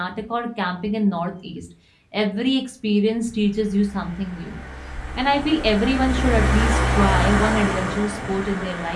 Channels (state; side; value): identical; both; correlation 1.00